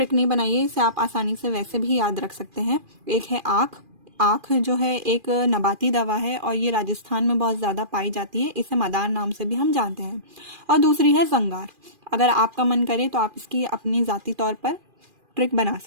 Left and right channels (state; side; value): late; left; 2.4 ms